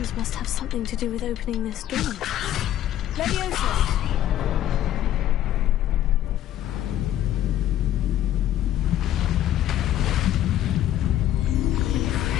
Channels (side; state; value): right; quieter; 12.2 dB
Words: must have something to do with opening this door. Leviosa!